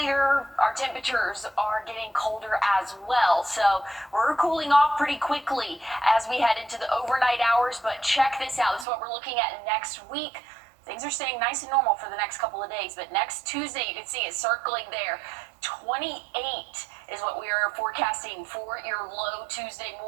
our temperatures are getting colder as well. So we're cooling off pretty quickly as we head into the overnight hours, but check this out. This is what we're looking at next week. Things are staying nice and normal for the next couple of days, but next Tuesday, you can see it circling there. 28 is what we are forecasting for your low Tuesday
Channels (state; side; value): drops out; left; at 8.8 s